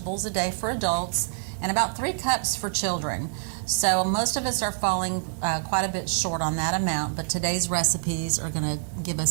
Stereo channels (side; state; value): left; silent; digital silence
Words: a day for adults and about 3 cups for children. So most of us are falling quite a bit short on that amount, but today's recipes are going to give